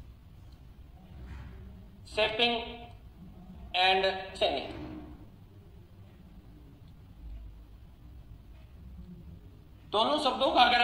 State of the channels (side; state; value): both; identical; correlation 1.00